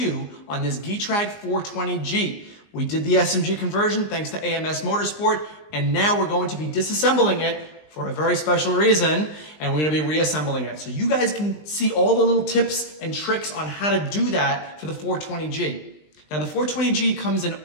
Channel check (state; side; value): late; right; 20 ms